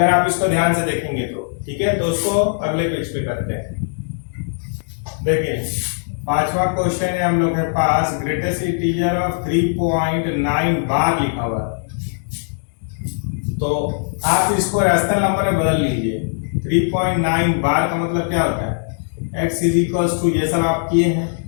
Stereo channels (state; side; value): silent; right; 66 dB below the other